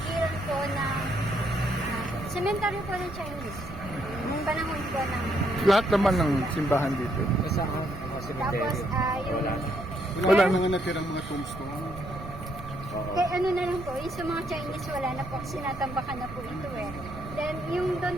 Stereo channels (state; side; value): noise; right; rumble, 12 dB below the sound